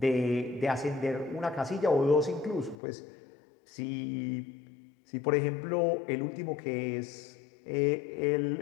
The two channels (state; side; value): drops out; right; at 2.8 s